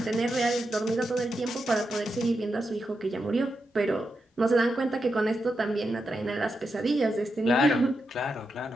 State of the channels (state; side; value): normal; both; correlation 0.86